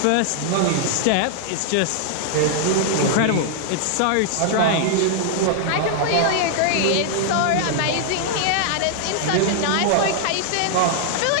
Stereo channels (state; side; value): different; both; correlation -0.01